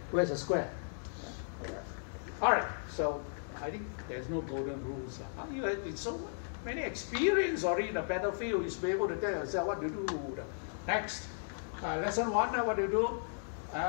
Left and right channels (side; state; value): right; silent; digital silence